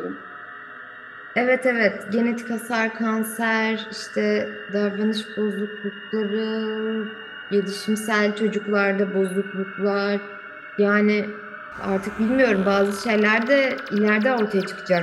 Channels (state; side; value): identical; both; correlation 1.00